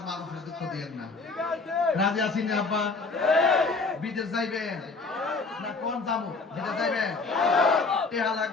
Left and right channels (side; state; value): right; quieter; 3.9 dB